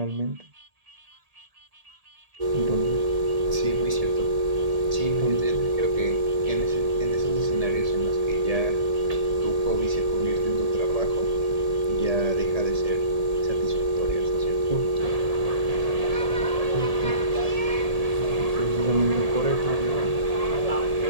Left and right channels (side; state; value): left; late; 1.8 ms